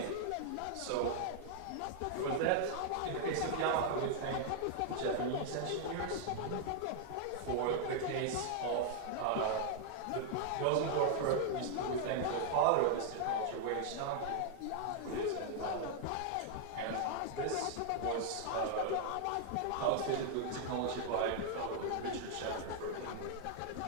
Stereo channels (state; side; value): different; both; correlation 0.00